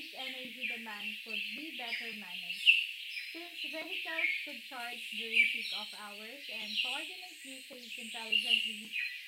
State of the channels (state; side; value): identical; both; correlation 1.00